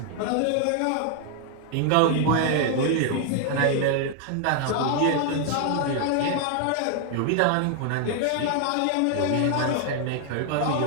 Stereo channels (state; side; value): different; both; correlation 0.00